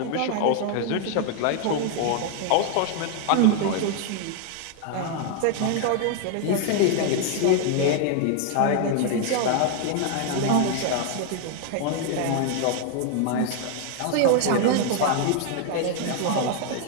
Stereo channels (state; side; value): different; both; correlation 0.00